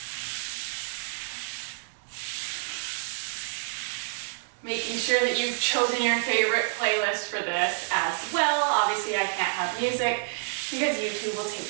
Making sure that you've chosen your favorite playlist for this as well. Obviously, I can't have music because YouTube will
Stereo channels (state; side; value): silent; left; 59 dB below the other